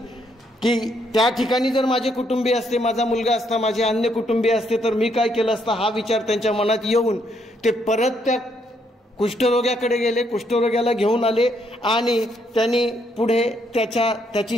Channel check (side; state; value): both; normal; correlation 0.73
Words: की त्या ठिकाणी जर माझे कुटुंबीय असते, माझा मुलगा असता, माझे अन्य कुटुंबीय असते तर मी काय केलं असतं, हा विचार त्यांच्या मनात येऊन ते परत त्या कुष्ठरोग्याकडे गेले, कुष्ठरोग्याला घेऊन आले आणि त्यांनी पुढे